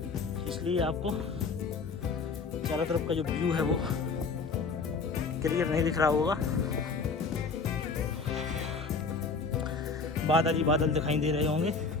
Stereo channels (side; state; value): right; quieter; 4.6 dB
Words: इसलिए आपको चारों तरफ का जो व्यू है वो क्लियर नहीं दिख रहा होगा। बादल ही बादल दिखाई दे रहे होंगे।